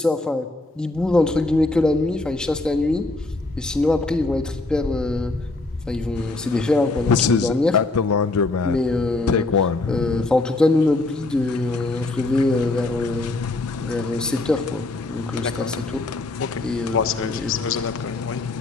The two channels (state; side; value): quieter; right; 3.0 dB